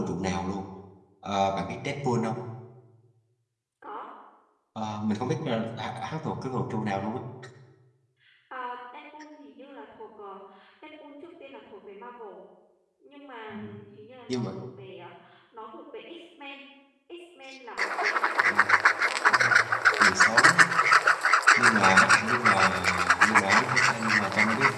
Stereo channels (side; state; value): both; identical; correlation 1.00